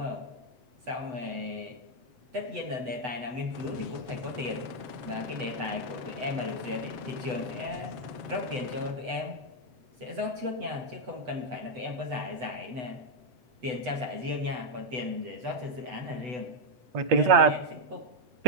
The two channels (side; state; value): left; late; 8.0 ms